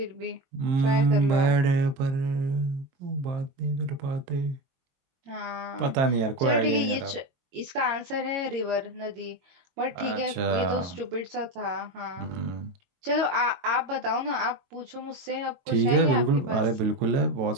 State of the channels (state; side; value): late; left; 22 ms